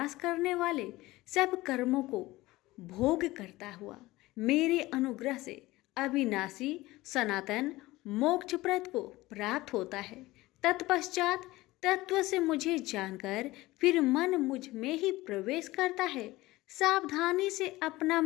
करने वाले सब कर्मों को भोग करता हुआ मेरे अनुग्रह से अविनाशी सनातन मोक्षप्रद को प्राप्त होता है। तत्पश्चात तत्व से मुझे जानकर फिर मन मुझ में ही प्रवेश करता है। सावधानी से अपना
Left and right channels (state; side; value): quieter; right; 18.9 dB